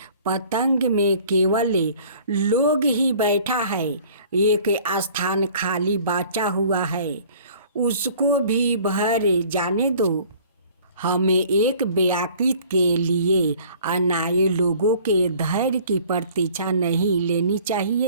पतंग में केवल लोग ही बैठा है। एक स्थान खाली बचा हुआ है, उसको भी भर जाने दो। हमें एक व्याकृत के लिए अनाए लोगों के धैर्य की प्रतीक्षा नहीं लेनी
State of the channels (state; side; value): inverted; both; correlation -0.52